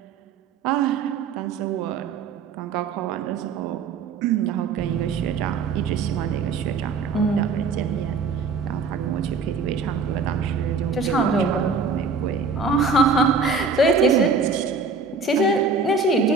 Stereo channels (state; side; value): quieter; left; 4.6 dB